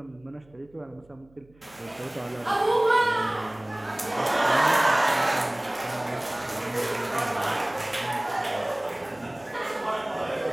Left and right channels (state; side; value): noise; right; hum, 29 dB below the sound